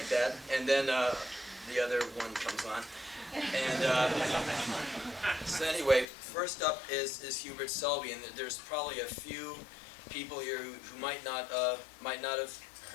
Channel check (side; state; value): right; drops out; at 6.1 s